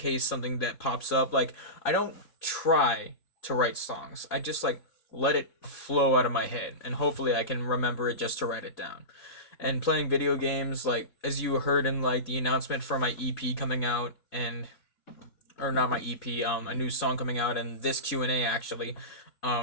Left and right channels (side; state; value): right; late; 3.7 ms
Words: something that pops up. Like I don't try to write songs. I just like let it flow out of my head and hopefully I can remember it just to write it down. And playing video games like as you heard in like the announcement for my EP coming out and or not my EP, a new song coming out and this Q&A actually.